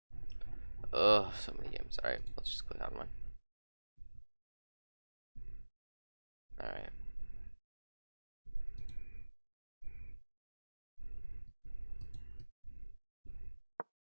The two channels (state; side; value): inverted; both; correlation -1.00